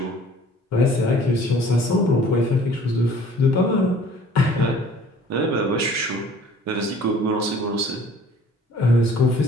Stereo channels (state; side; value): normal; both; correlation 0.52